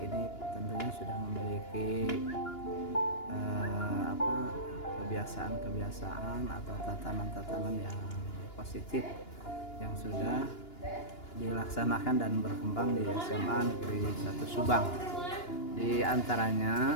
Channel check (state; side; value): late; right; 2.9 ms